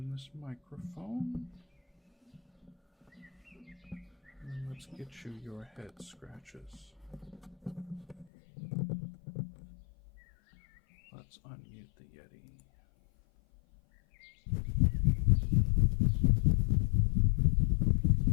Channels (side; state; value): right; drops out; at 8.2 s